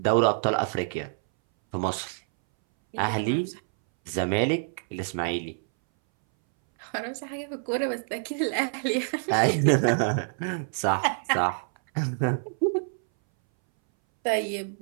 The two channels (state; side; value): silent; left; 60 dB below the other